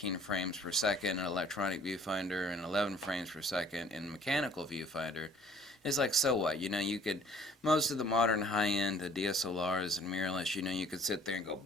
frames per second in electronic viewfinder and 11 frames per second in mechanical viewfinder. It's like, so what? You could, most of the modern high-end DSLRs and mirrorless, you could sit there and go,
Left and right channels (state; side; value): normal; both; correlation 0.55